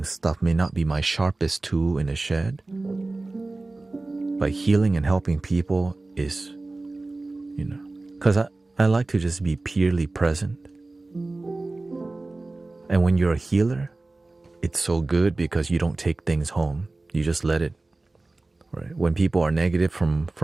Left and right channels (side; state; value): left; quieter; 3.2 dB